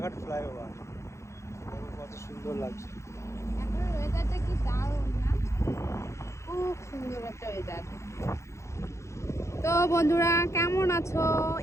ফ্লাইওভার, কত সুন্দর লাগছে। এখন ওয়েদারটা কি দারুণ না? খুব সুন্দর একটা ওয়েদার। তো বন্ধুরা কেমন আছো?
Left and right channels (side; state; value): right; late; 0.14 ms